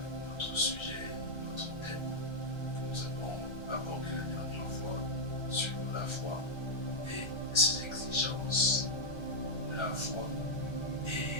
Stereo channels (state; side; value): late; right; 1.4 ms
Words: notre sujet, notre thème que nous avons abordé la dernière fois sur la foi et ses exigences. La foi